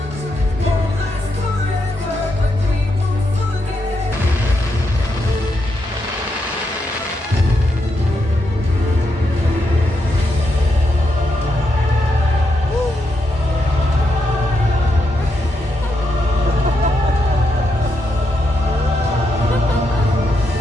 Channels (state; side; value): normal; both; correlation 0.82